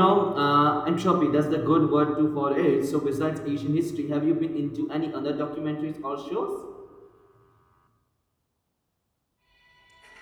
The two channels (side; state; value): both; identical; correlation 1.00